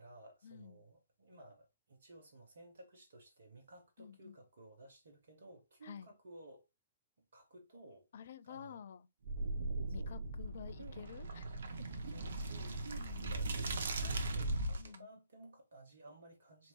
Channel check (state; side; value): inverted; both; correlation -0.70